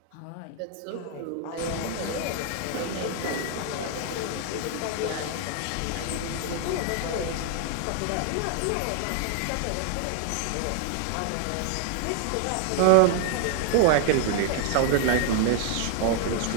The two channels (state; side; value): different; both; correlation 0.00